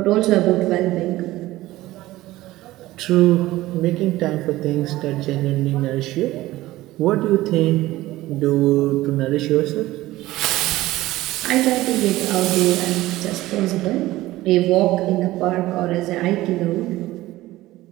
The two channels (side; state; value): left; quieter; 17.0 dB